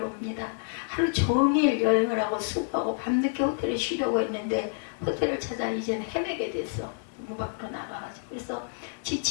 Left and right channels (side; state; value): right; silent; digital silence